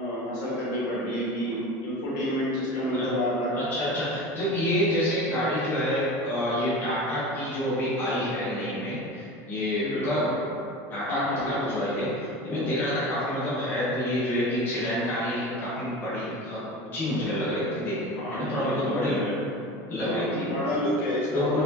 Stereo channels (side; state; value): both; normal; correlation 0.32